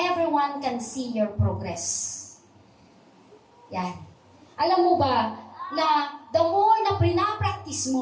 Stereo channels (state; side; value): identical; both; correlation 1.00